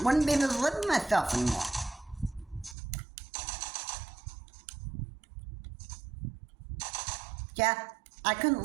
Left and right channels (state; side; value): drops out; left; at 2.8 s